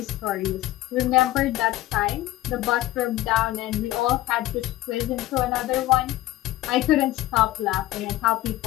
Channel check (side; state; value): right; quieter; 16.0 dB